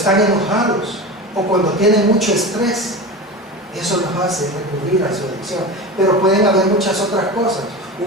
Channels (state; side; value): normal; both; correlation 0.27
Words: enojados o cuando tienen mucho estrés, eso los hace recurrir a su adicción. Pero pueden haber muchas otras cosas,